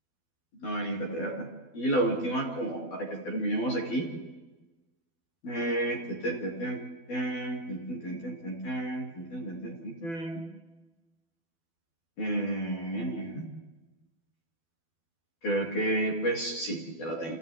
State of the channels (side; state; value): right; late; 12 ms